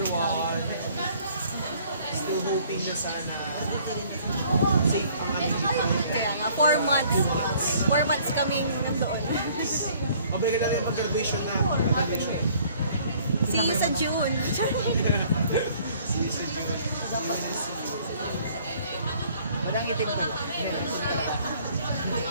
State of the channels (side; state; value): both; inverted; correlation -0.58